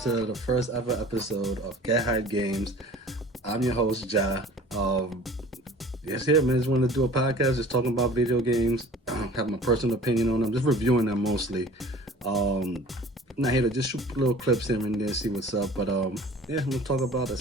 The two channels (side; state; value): both; normal; correlation 0.46